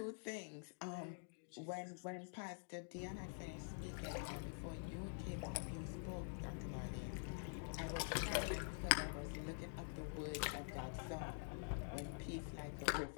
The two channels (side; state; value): right; silent; digital silence